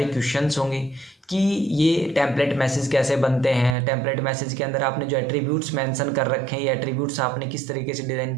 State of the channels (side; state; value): left; drops out; at 3.8 s